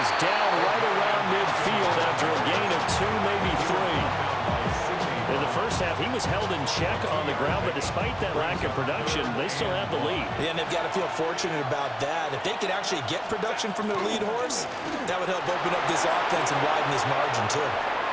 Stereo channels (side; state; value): both; identical; correlation 1.00